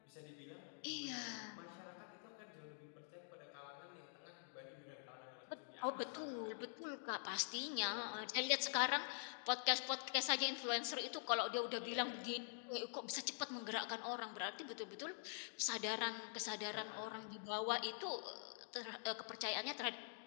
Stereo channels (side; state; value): right; silent; digital silence